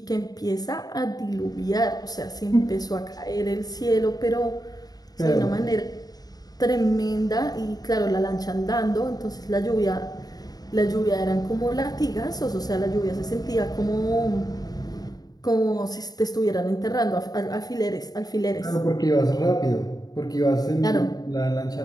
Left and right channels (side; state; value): right; late; 0.19 ms